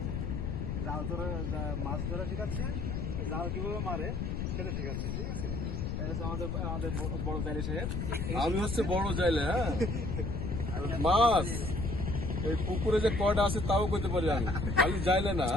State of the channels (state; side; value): noise; left; rumble, 2 dB below the sound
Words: জাল ধরা, মাছ ধরা শিখাচ্ছে, জাল কিভাবে মারে সেটা শিখাচ্ছে, ঠিক আছে? আমাদের আমাদের বড় তাইলে সাহেব। আমি হচ্ছে বড় যাইলে, হ্যাঁ, মাছ এই পুকুরে যে কয়টা আছে তাও কইতে পারি আমি, খালি যাইলে না।